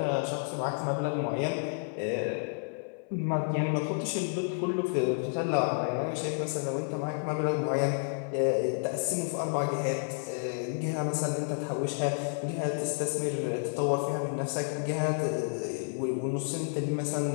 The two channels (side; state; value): right; silent; 57 dB below the other